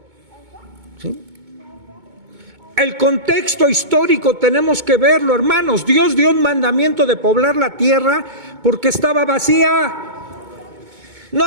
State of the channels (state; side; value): late; left; 2.2 ms